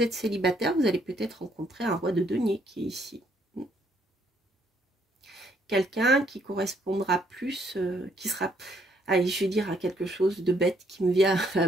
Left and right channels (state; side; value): normal; both; correlation 0.69